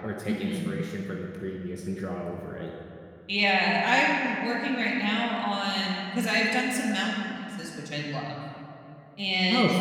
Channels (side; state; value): both; identical; correlation 1.00